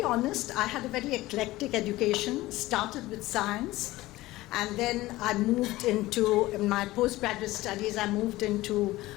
honest, I had a very eclectic education, started with science, And then I moved into, in my postgraduate studies, I moved into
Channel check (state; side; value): quieter; right; 18.0 dB